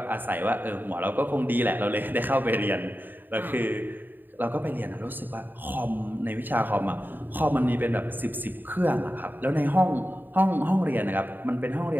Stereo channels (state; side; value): late; left; 0.091 ms